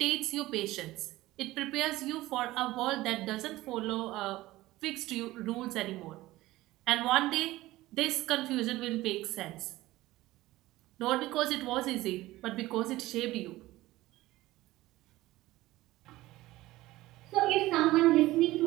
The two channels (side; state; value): left; quieter; 17.5 dB